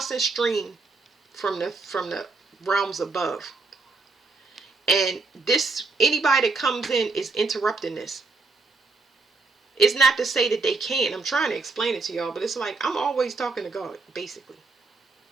stream from the realms above. And this, anybody that comes in is interrupting this. It's not to say that they can't. I'm trying to explain it to y'all, but it's like I'm always talking to God, basically.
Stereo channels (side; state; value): left; quieter; 3.9 dB